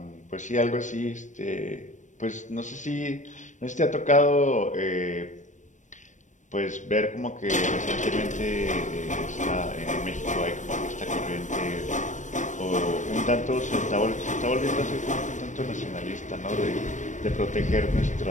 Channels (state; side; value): late; right; 0.35 ms